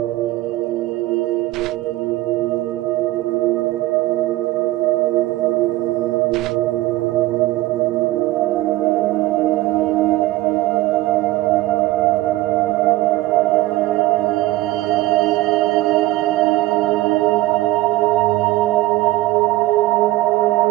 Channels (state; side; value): quieter; left; 17.3 dB